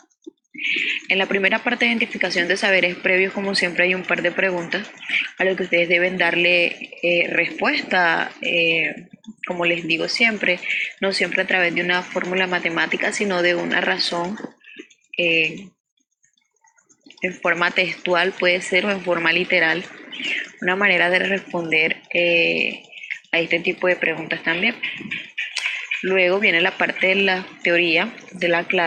En la primera parte de identificación de saberes previos, como siempre, hay un par de preguntas a lo que ustedes deben darle respuesta. Como les digo siempre, no siempre a través de una fórmula matemática, sino de una razón en forma textual, puede ser, o en forma literal, una manera de responder a este tipo de preguntas también. Luego viene la parte de la teoría de la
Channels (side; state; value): both; identical; correlation 1.00